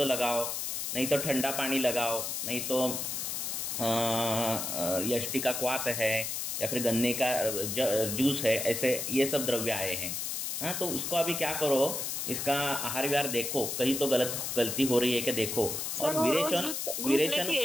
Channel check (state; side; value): noise; left; hiss, 3 dB below the sound